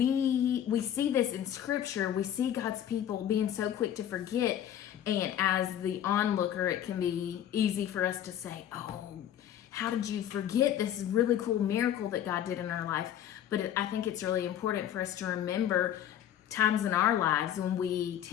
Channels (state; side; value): quieter; right; 10.6 dB